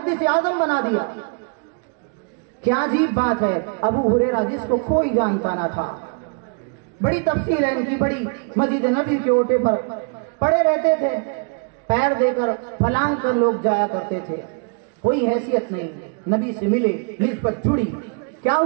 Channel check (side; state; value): left; quieter; 37.7 dB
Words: आज़म बना दिया। क्या अजीब बात है। अबू हुरैरा जिसको कोई जानता ना था, बड़ी तफसील है इनकी, बड़ी मस्जिद नबी के ओटे पर पड़े रहते थे, पैर देकर फलांग कर लोग जाया करते थे, कोई हैसियत नहीं। नबी से मिले, निस्बत जुड़ी, क्या